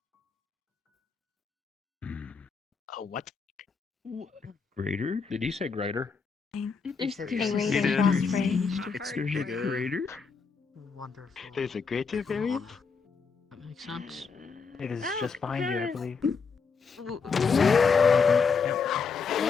What? Greater? Did he say greater? There's The there's rate It of is. frost rage. It's There's a bigger. greater? Wonderful. There's a greater variant? That makes sense. It is just behind you, I believe.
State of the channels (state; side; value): quieter; right; 5.3 dB